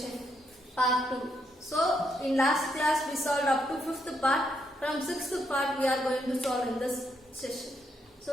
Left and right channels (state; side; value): normal; both; correlation 0.77